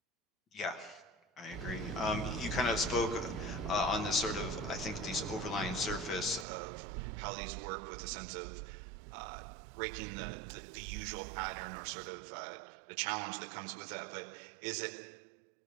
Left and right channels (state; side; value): drops out; left; at 6.5 s